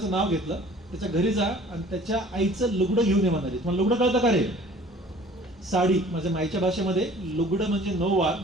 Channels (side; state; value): both; normal; correlation 0.49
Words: नाव घेतलं, त्याच्या घरी जा आणि त्याच्या आईचं लुगडं घेऊन ये म्हणाली. तुम्हाला लुगडं कळतं का रे? साडी. माझ्या माईच्या भाषेमध्ये लुगडं म्हणजे 9 वार